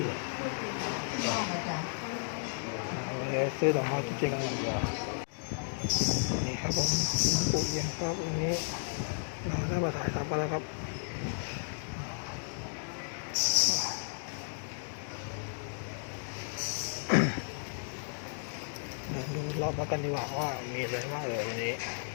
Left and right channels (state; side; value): silent; right; digital silence